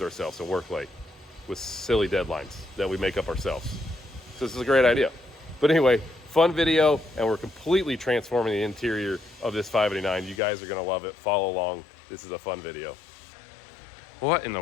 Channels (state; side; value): drops out; right; at 10.4 s